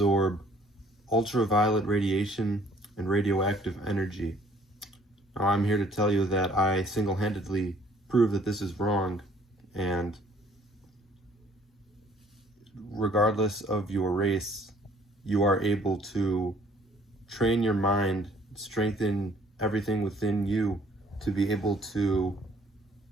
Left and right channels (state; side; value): normal; both; correlation 0.59